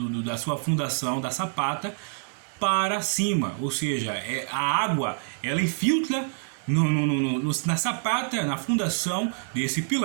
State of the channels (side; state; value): left; silent; 60 dB below the other